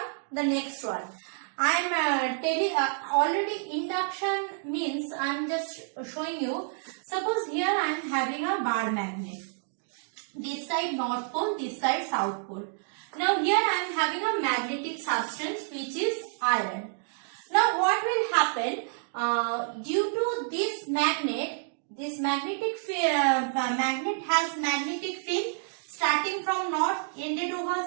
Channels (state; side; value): silent; left; 59 dB below the other